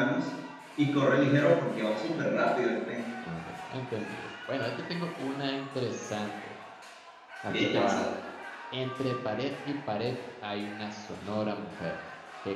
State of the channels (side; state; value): both; identical; correlation 1.00